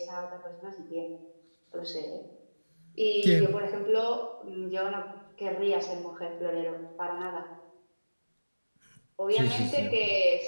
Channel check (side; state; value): both; inverted; correlation -1.00